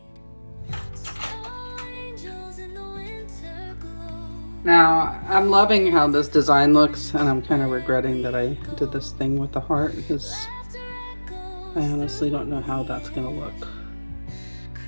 Snow angels in the winter glow. Now, I'm loving how this design looks, and I'm kind of regretting that I did this thing with the heart because I honestly don't know how that's gonna look.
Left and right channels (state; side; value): inverted; both; correlation -1.00